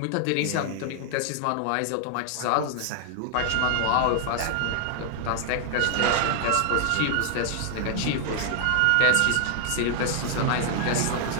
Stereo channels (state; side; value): different; both; correlation 0.00